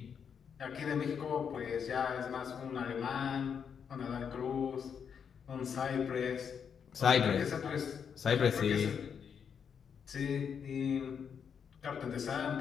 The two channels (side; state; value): right; quieter; 7.1 dB